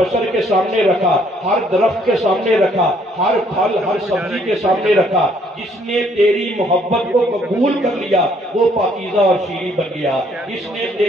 کے سامنے رکھا، ہر درخت کے سامنے رکھا، ہر پھل ہر سبزی کے سامنے رکھا، جس نے تیری محبت کو قبول کر لیا وہ پاکیزہ اور شیریں بن گیا، جس نے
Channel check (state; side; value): normal; both; correlation 0.65